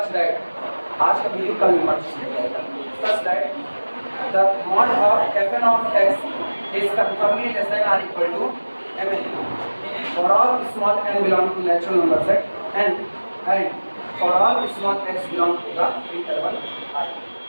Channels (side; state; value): both; inverted; correlation -1.00